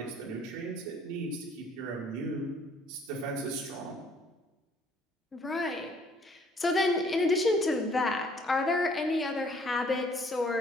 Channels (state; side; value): normal; both; correlation 0.60